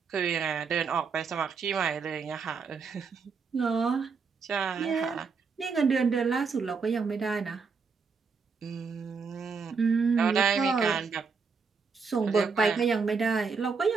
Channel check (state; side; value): quieter; left; 5.3 dB